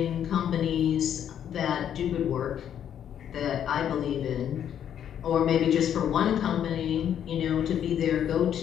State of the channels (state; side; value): quieter; right; 9.5 dB